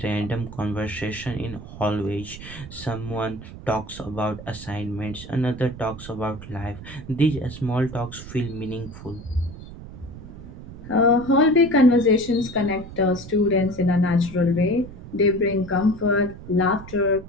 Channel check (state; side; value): noise; right; rumble, 14 dB below the sound